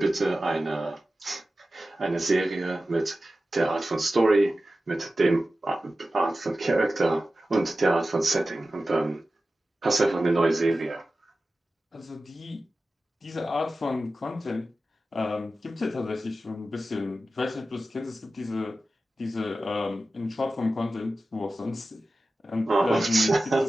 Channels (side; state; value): both; normal; correlation 0.94